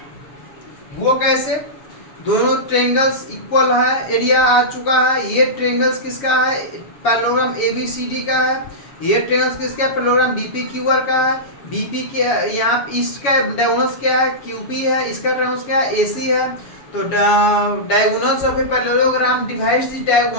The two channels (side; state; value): right; late; 7.2 ms